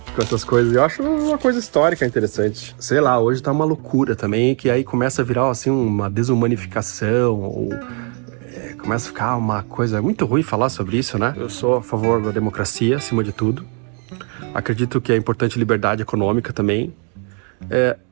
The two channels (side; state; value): left; quieter; 39.3 dB